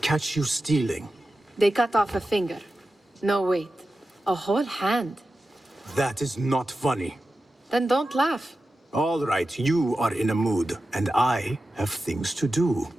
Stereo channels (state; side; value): normal; both; correlation 0.93